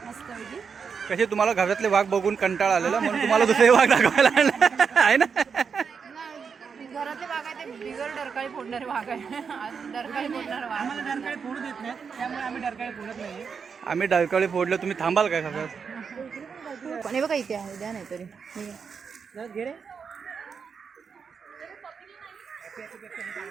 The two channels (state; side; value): quieter; left; 6.1 dB